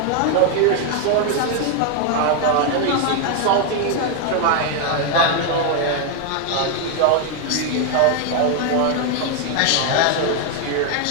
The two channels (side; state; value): both; different; correlation 0.01